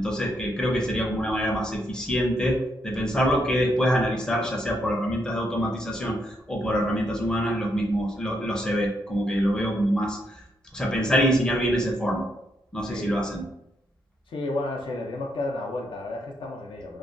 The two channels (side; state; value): both; normal; correlation 0.78